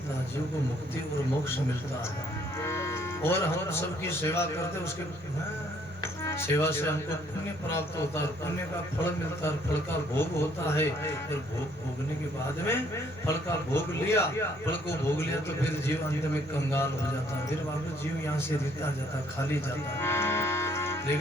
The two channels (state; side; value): normal; both; correlation 0.64